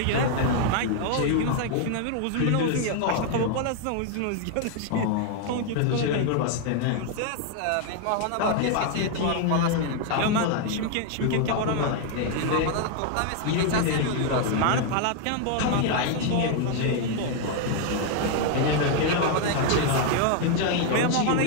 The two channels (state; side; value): different; both; correlation 0.01